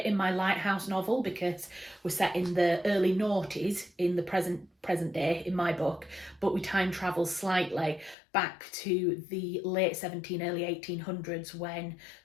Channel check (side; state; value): right; drops out; at 8.2 s